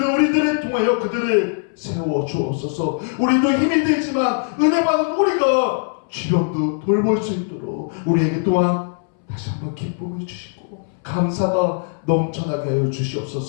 우리들을 통하여 그들을 세워 주옵소서. 우리도 힘이 들지만 은혜 받은 우리가 주변도 돌볼 수 있도록 우리에게 또한 다시 한번 기쁨을 주시고 감사가 넘쳐나게 하여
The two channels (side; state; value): right; silent; 65 dB below the other